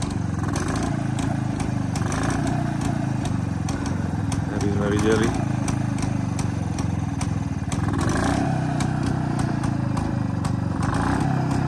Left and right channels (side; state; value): both; identical; correlation 1.00